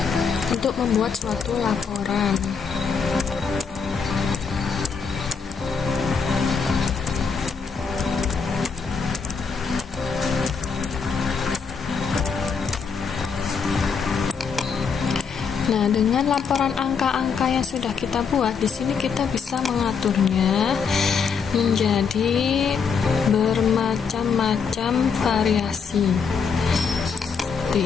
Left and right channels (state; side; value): quieter; right; 5.8 dB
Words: untuk membuat suatu laporan. Nah, dengan laporan angka-angka yang sudah kita buat, di sini kita bisa mengaturnya menjadi bermacam-macam variasi.